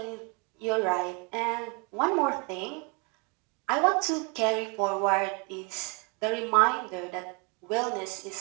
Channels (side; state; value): left; quieter; 32.1 dB